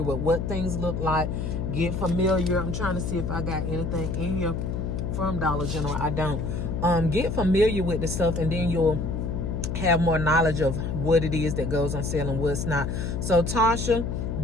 with what things look like. Get familiar. I'm trying to see if I got anything in here from Dollar General. I don't. Get familiar with the stuff, and then you'll have more knowledge of what it is that goes on sale and what's not. So, Tasha,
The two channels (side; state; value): left; noise; hum, 2 dB below the sound